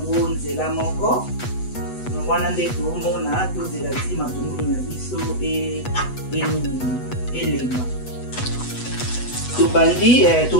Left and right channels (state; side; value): late; right; 8.1 ms